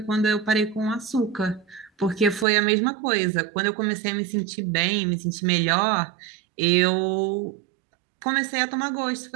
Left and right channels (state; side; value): drops out; left; at 2.5 s